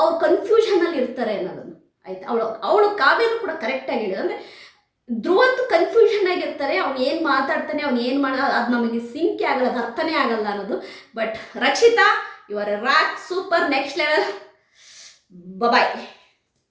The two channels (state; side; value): identical; both; correlation 1.00